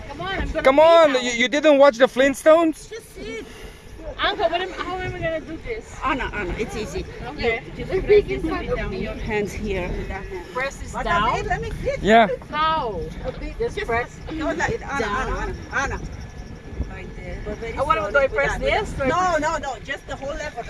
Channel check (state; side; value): identical; both; correlation 1.00